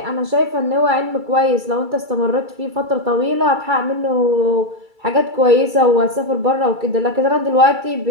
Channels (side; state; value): left; late; 2.3 ms